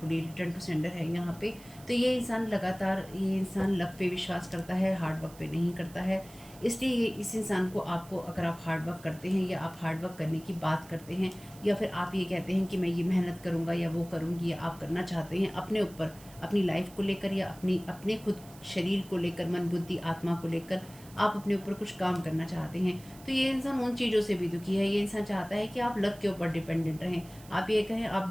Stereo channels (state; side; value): noise; right; hiss, 21 dB below the sound